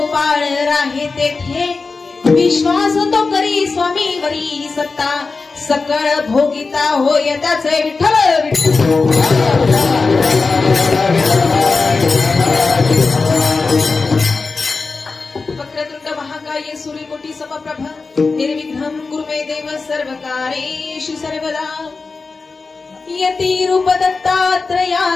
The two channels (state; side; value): quieter; right; 4.2 dB